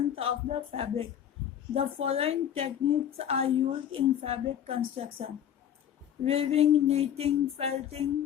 of the fabric. The following techniques are used in fabric construction: weaving, knitting, felting,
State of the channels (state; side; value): quieter; right; 9.7 dB